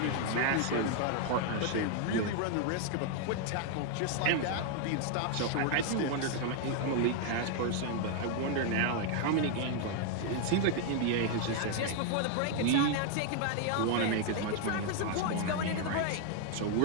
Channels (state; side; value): different; both; correlation 0.00